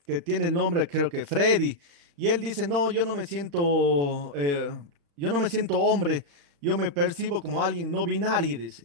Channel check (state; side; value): late; left; 35 ms